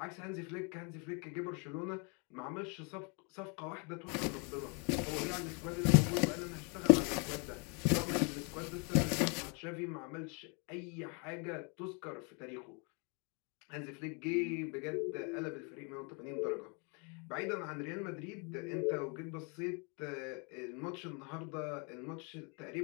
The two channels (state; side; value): quieter; right; 34.4 dB